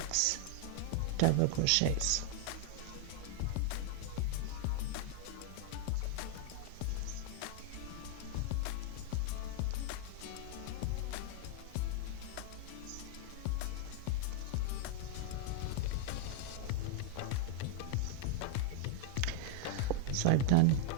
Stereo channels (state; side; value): different; both; correlation 0.00